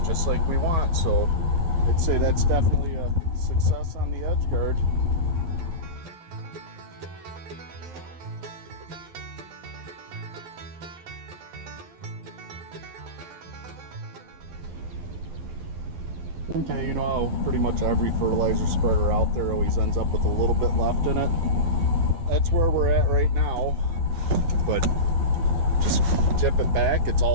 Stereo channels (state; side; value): late; left; 12 ms